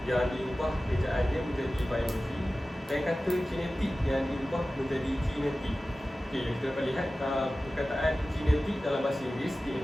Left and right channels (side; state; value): both; normal; correlation 0.96